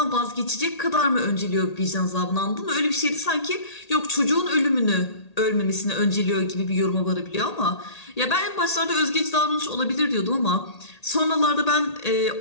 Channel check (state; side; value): late; right; 1.8 ms